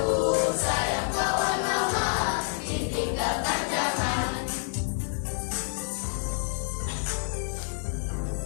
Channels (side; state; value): right; silent; 59 dB below the other